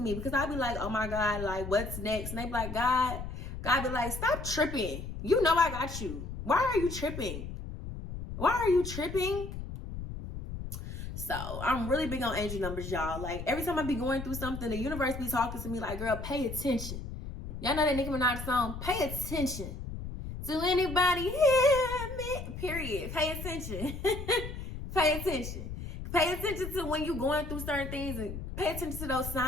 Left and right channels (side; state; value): left; noise; rumble, 8 dB below the sound